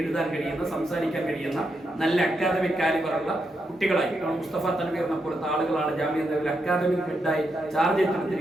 എഴുതാൻ കഴിയുന്ന, സംസാരിക്കാൻ കഴിയുന്ന നല്ല അക്കാദമിക് കാലിബറുള്ള കുട്ടികളായി മുസ്തഫ തൻവീറിനെ പോലത്തെ ആളുകളാണ് ജാമിയ നദിയിൽ അക്കാദമിക് ഹെഡായി ചാർജ്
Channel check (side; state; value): both; normal; correlation 0.83